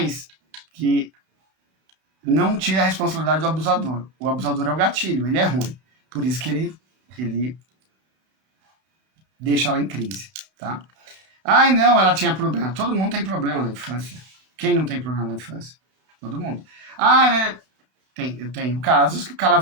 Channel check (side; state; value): left; late; 32 ms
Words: que não tira a responsabilidade do abusador. O abusador é o gatilho, ele é ruim. Por isso que ele deixa ela em crise, tá? Ai, não, ela tinha problema. Todo mundo tem problema na infância. Quem não tem problema na infância? Todo mundo. Ah, eu tenho casos que o cara